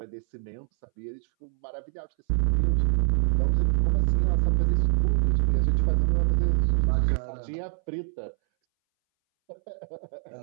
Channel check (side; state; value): left; silent; 61 dB below the other